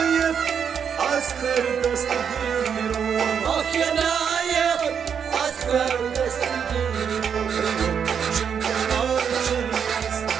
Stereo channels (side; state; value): left; quieter; 7.4 dB